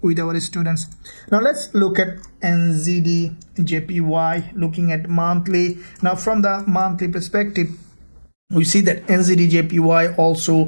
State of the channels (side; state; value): both; inverted; correlation -1.00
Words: with our students. Now let's look at NZDJPY, looking at monthly. Now from the monthly perspective, we see that NZDJPY